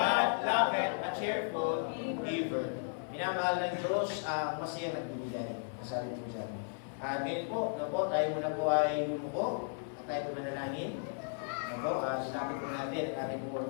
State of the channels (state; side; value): silent; right; digital silence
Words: loveth a cheerful giver. Minamahal ng Diyos ang masaya nagbibigay. Masabi po dyan. At ngayon po, tayo muna po ay lumuko at tayo po manalangin. Salamat po natin ang